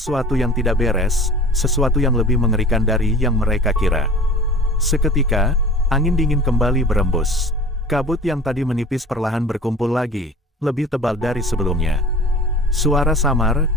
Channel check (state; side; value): normal; both; correlation 0.42